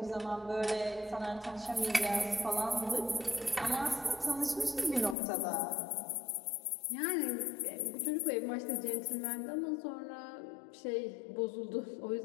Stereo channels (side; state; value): right; drops out; at 5.2 s